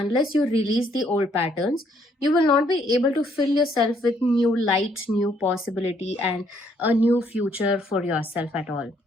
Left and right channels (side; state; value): both; normal; correlation 0.68